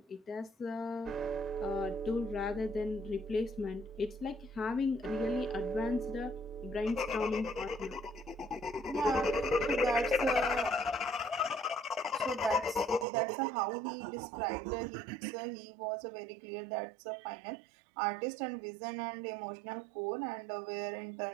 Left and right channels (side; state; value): left; drops out; at 13.1 s